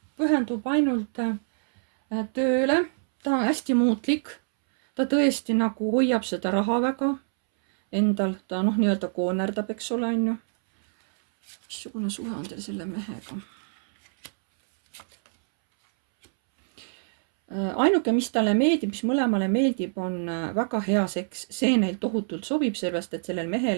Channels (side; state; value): left; silent; 61 dB below the other